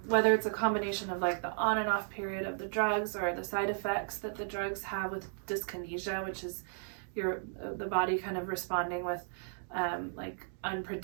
whether it's a combination of like the on and off period of the drugs, or the side effects that the drugs have with dyskinesia, which is the body kind of responding with like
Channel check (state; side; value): silent; left; digital silence